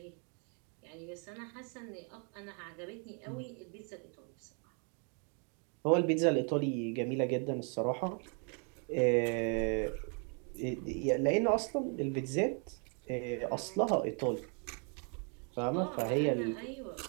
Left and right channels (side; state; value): left; quieter; 38.7 dB